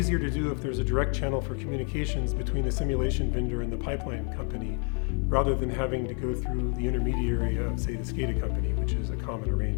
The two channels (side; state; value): right; quieter; 39.6 dB